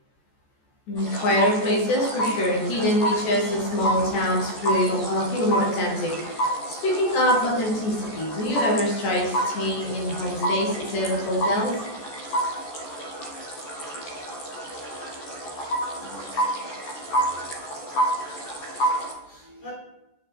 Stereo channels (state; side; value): late; right; 14 ms